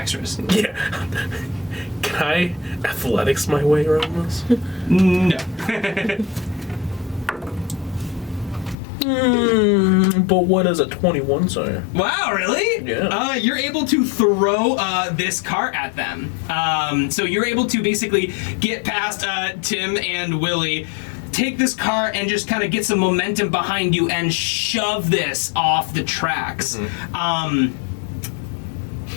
Yeah. Can I athletics my way around this? No. But what does a 21 say? Wow, really? Yeah. You're able to throw this cart at them. So you're able to basically get past Tim and Willie, take this cart and just kind of get some momentum behind you and shove this off the tracks.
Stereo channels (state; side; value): drops out; right; at 8.8 s